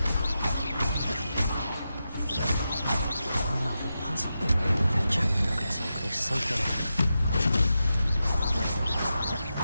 Another puzzle. If Jackdaw could solve this, so can I.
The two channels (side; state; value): both; inverted; correlation -0.89